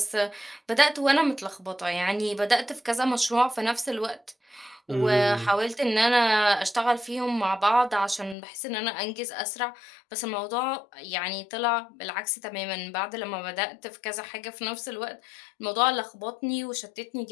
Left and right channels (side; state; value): right; drops out; at 8.3 s